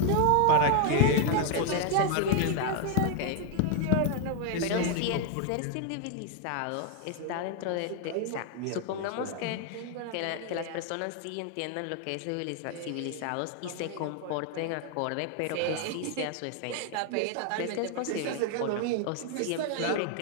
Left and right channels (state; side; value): different; both; correlation 0.00